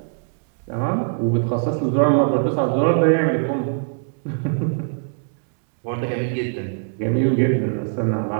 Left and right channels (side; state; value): left; silent; digital silence